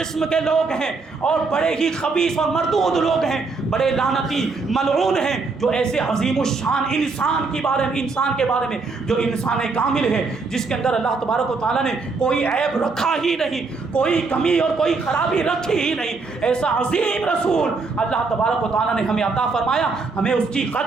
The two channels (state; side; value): quieter; left; 4.2 dB